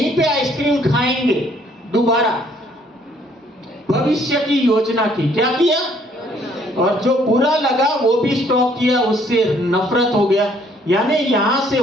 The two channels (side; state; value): both; normal; correlation 0.63